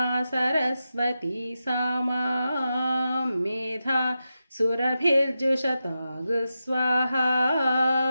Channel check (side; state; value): both; inverted; correlation -0.90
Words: సరస్వతీ సామా మేధా సురభిర్జుషతాగు స్వాహా.